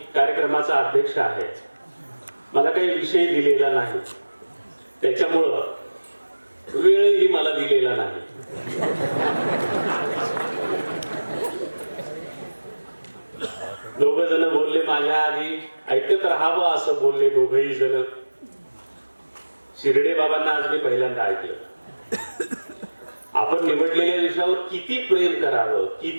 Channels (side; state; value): both; inverted; correlation -1.00